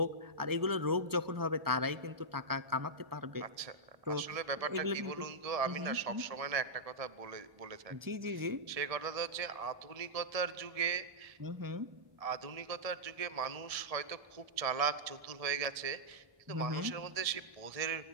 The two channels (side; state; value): left; late; 1.7 ms